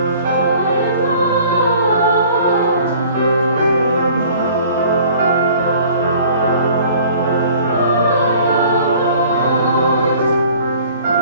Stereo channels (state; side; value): inverted; both; correlation -0.50